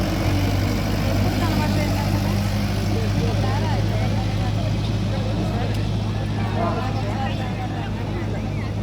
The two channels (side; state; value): both; identical; correlation 1.00